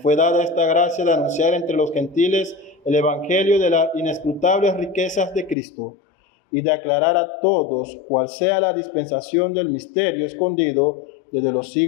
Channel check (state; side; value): drops out; right; at 5.6 s